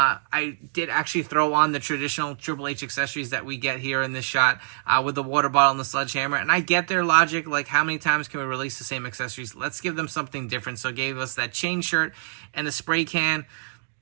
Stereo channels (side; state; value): left; silent; digital silence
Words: did actually throw on the traditional Triple H accessories that we get here in this shot with the water bottle and the sledgehammer. And I get their logic, like how many times can we release the same accessories? Let's give them something different. So gave us that chain shirt and a spray can.